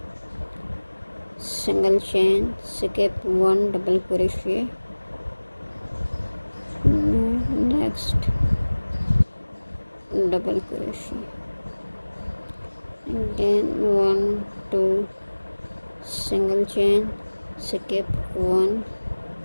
single chain, skip one double crochet, next double crochet, and then 1, 2, single chain, skip one,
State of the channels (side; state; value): both; inverted; correlation -1.00